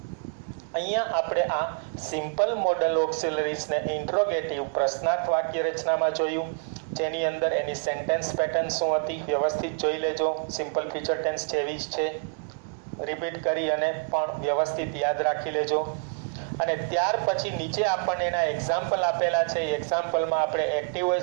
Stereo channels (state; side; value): silent; left; 60 dB below the other